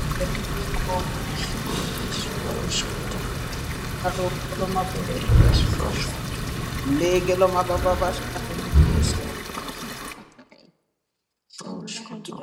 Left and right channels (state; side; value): identical; both; correlation 1.00